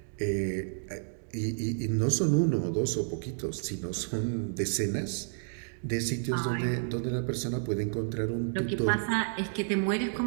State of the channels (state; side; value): silent; left; digital silence